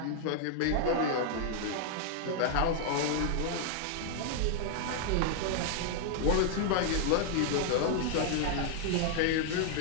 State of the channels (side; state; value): both; different; correlation 0.00